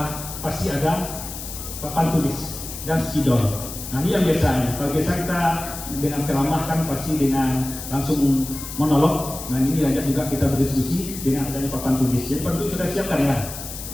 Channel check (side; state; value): left; noise; hiss, 10 dB below the sound